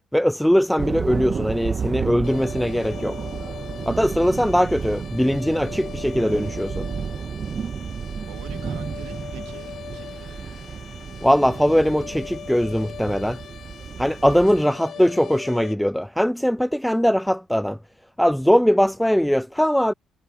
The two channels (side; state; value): both; normal; correlation 0.98